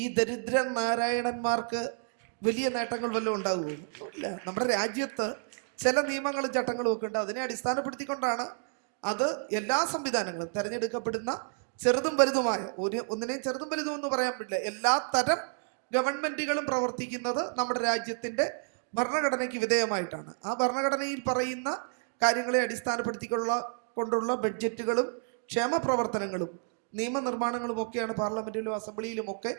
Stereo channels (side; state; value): left; silent; 58 dB below the other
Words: ഈ ദരിദ്ര നാരായണന്മാർക്ക് വലിയ നേട്ടങ്ങൾ വല്ലതും ഉണ്ടാകുകയില്ല. നമ്മുടെ രാജ്യത്ത് ചില നിയമങ്ങളും ചട്ടങ്ങളും ഒക്കെ ഉണ്ട്. അതിനെ അടിസ്ഥാനപ്പെടുത്തിക്കൊണ്ടാണ് അത് എല്ലാ സംവിധാനങ്ങളും തെരഞ്ഞെടുക്കപ്പെടുന്ന ചെറുതും വലുതുമായ ഒന്നിനെ ചെറുതും വലുതും എന്ന് പറയാൻ പറ്റില്ല, എല്ലാ തരം ഗവൺമെന്റുകളും പ്രവർത്തിക്കുന്നത് നമ്മുടെ രാജ്യത്തിന്റെ ഭരണഘടനയ്ക്ക് വിധേയമായിട്ടാണ്. ആ ഭരണഘടനയിൽ പറയുന്ന കാര്യങ്ങളെ അടിസ്ഥാനപ്പെടുത്തിക്കൊണ്ടുള്ള ബഡ്ജറ്റുകളും ക്ഷേമ പ്രവർത്തനങ്ങളും നിയമനിർമ്മാണങ്ങളും ഒക്കെയാണ് പാർലമെന്റിലും അസംബ്ലിയിലും ഒക്കെ